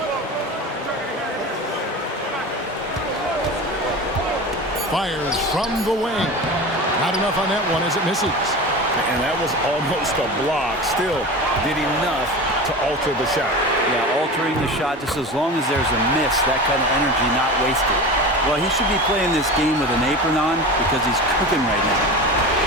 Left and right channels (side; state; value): both; normal; correlation 0.30